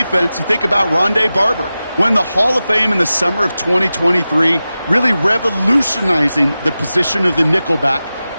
you think about Rondé Barber, won the Hall of Fame in the summer of 2023, really revolutionizing the position of the nickelback.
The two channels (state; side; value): inverted; both; correlation -0.94